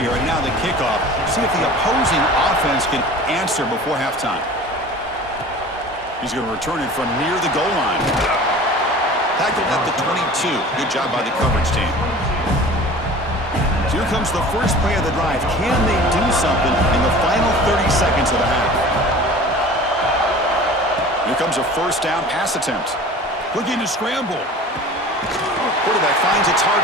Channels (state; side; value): normal; both; correlation 0.41